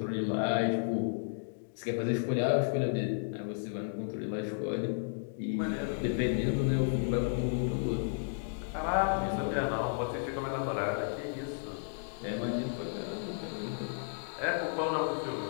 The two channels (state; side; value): silent; right; digital silence